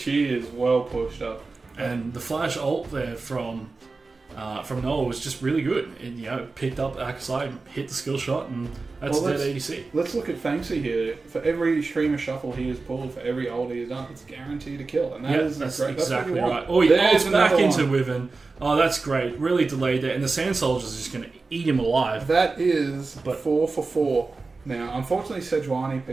is well pushed up. And the flash ult there from Noah was just really good. It picked up Akasai, hit the skill shot, and that's dead ADC. Let's look at Fanksy here. For every Shurima shuffle he has pulled, for every ult he has done, it's guaranteed a kill. And that's exactly right. Oh, he ults back into Wyvern. Oh, that's great. Really delayed there. And the Sand Soldier's just going to eat him alive. That is 4 for 4. Now, unfortunately, Sejuani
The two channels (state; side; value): quieter; left; 3.9 dB